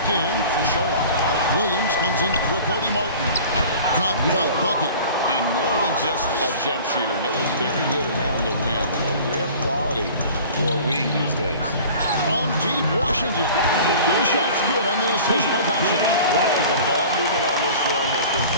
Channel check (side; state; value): both; inverted; correlation -0.43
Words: in for Charlotte. Williams comes in for Cody Martin. Got that bucket. And more than just a jump shooter, Miller's very good around the rim. A rare quality for a wing these days. From deep Washington. The shot's good on the assist by Doncic. The ball movement on this run has been